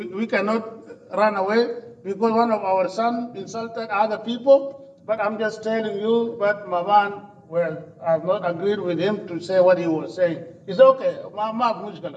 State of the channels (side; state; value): both; identical; correlation 1.00